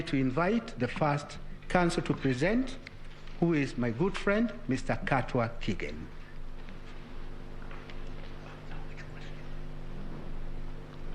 to invite the first counsel to present, who is my good friend, Mr. Katwa Kigen.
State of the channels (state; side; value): identical; both; correlation 1.00